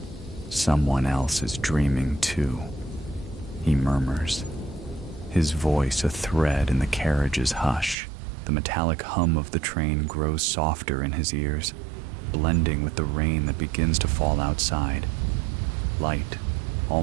Someone else is dreaming too, he murmurs, his voice a thread in the carriage's hush. The metallic hum of the train grows softer in his ears, blending with the rain that begins to fall outside. Light,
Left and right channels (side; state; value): left; drops out; at 8.0 s